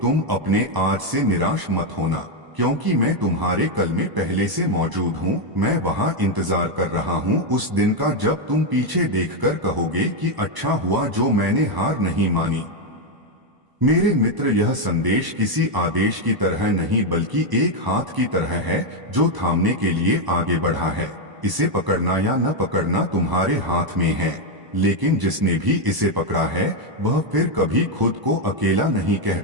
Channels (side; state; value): left; late; 1.0 ms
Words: तुम अपने आज से निराश मत होना, क्योंकि मैं तुम्हारे कल में पहले से मौजूद हूँ। मैं वहाँ इंतजार कर रहा हूँ उस दिन का जब तुम पीछे देखकर कहोगे कि अच्छा हुआ जो मैंने हार नहीं मानी। मेरे मित्र, यह संदेश किसी आदेश की तरह नहीं बल्कि एक हाथ की तरह है जो थामने के लिए आगे बढ़ा है। इसे पकड़ना या न पकड़ना तुम्हारे हाथ में है, लेकिन जिसने भी इसे पकड़ा है वह फिर कभी खुद को अकेला नहीं कह